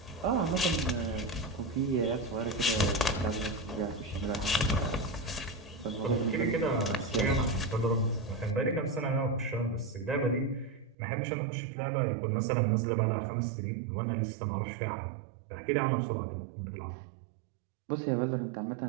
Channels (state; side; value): drops out; left; at 11.0 s